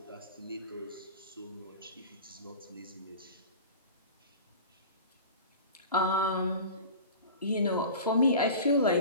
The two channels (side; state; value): both; inverted; correlation -0.36